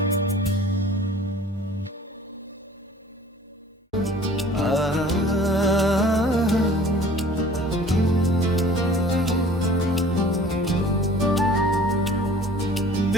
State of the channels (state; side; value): normal; both; correlation 0.49